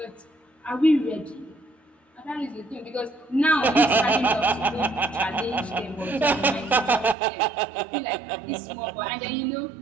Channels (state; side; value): drops out; left; at 7.2 s